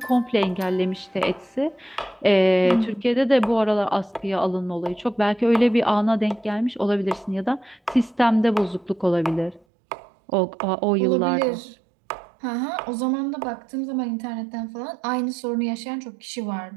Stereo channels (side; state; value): left; drops out; at 9.7 s